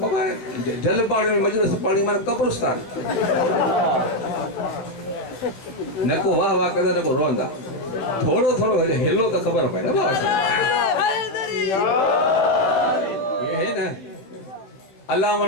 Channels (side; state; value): right; late; 15 ms